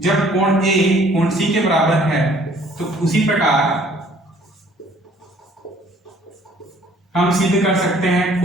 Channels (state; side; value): normal; both; correlation 0.57